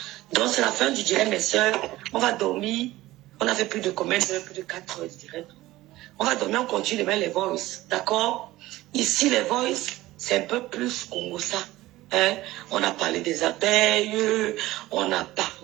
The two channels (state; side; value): quieter; left; 17.2 dB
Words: Donc, c'est la fin du direct, mes soeurs. On va dormir. On a fait plus de combien d'heures? Plus de 4 heures de direct. On va dormir, on continue demain les voice. D'accord? Ici, les voice, c'est un peu plus Congo ça. Hein? On a parlé des abeilles. On a